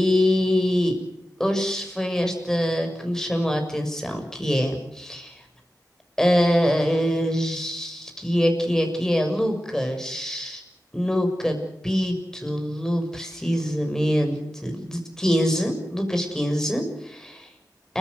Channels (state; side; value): normal; both; correlation 0.93